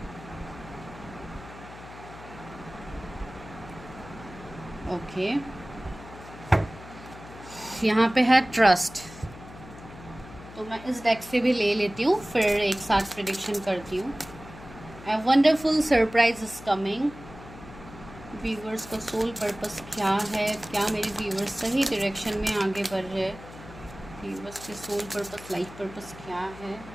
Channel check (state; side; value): noise; left; hum, 16 dB below the sound